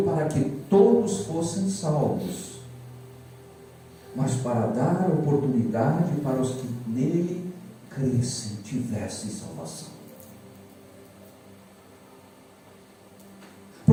para que todos fossem salvos, mas para dar oportunidade para os que nele crescem, tivessem salvação.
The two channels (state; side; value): identical; both; correlation 1.00